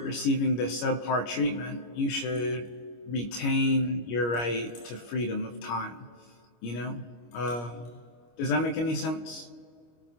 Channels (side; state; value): right; late; 25 ms